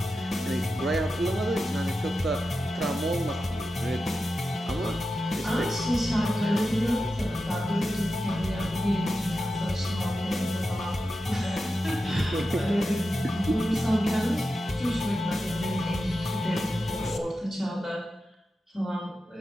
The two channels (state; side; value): normal; both; correlation 0.91